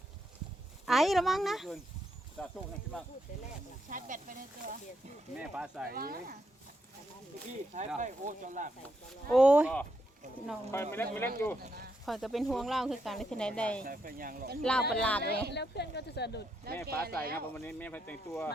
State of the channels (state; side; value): normal; both; correlation 0.80